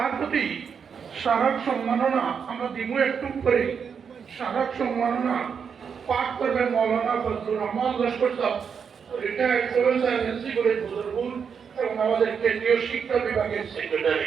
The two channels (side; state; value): left; quieter; 6.6 dB